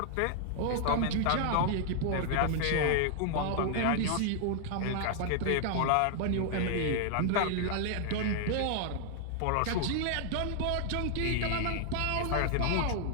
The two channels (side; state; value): both; different; correlation 0.00